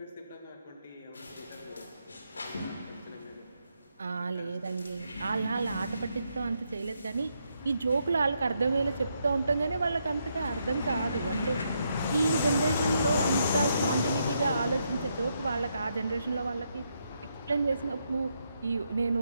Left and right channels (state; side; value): inverted; both; correlation -0.79